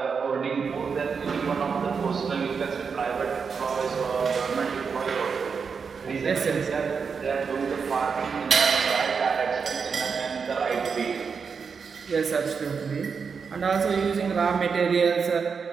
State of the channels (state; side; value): quieter; left; 5.7 dB